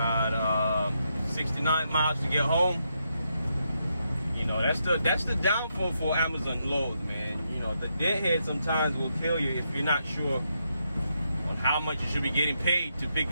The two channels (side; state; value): both; inverted; correlation -0.81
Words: 69 miles to get home. You know, that's the downfall for Amazon loads, man. You know, the deadhead sometimes will kill you if you're not sure on how much you should be getting paid to pick